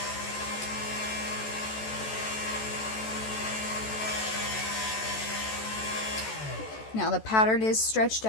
Now the pattern is stretched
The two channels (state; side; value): late; right; 14 ms